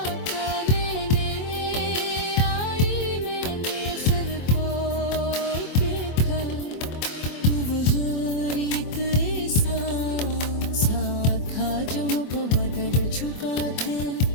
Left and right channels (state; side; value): late; right; 24 ms